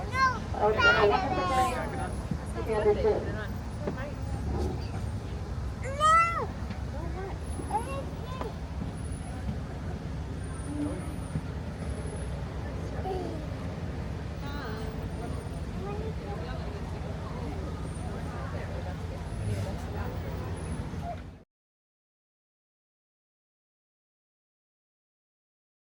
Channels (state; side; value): identical; both; correlation 1.00